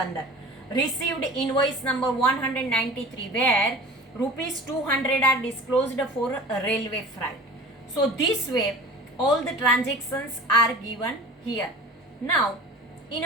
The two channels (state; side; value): normal; both; correlation 0.40